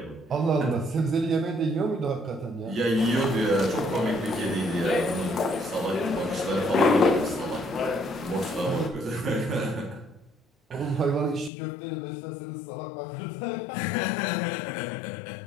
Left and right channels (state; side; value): drops out; right; at 11.5 s